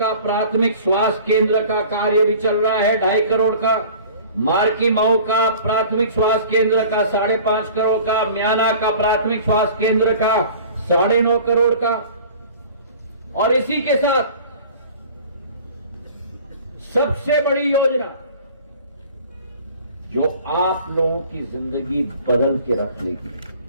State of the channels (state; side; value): inverted; both; correlation -0.46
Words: प्राथमिक स्वास्थ्य केंद्र का कार्य भी चल रहा है 2.5 करोड़ का, मार्की मऊ का प्राथमिक स्वास्थ्य केंद्र का 5.5 करोड़ का, म्याना का प्राथमिक स्वास्थ्य केंद्र का 9.5 करोड़ का, और इसी के साथ सबसे बड़ी योजना जो आप लोगों की जिंदगी बदल के रख लेगी।